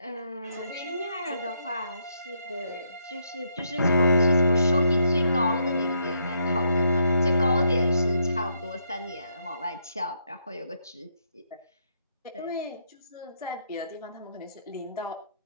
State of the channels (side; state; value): both; inverted; correlation -0.76